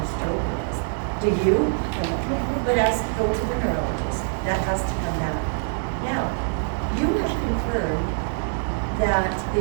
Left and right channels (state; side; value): silent; left; digital silence